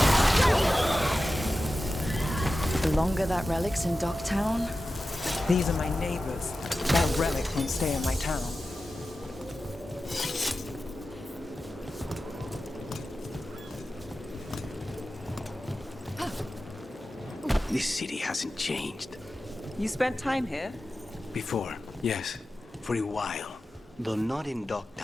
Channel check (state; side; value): normal; both; correlation 0.93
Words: The longer that relic's in Docktown... These are my neighbors. That relic won't stay in my town. This city hasn't changed. You spent time here? Before, yes. For a while. Though not in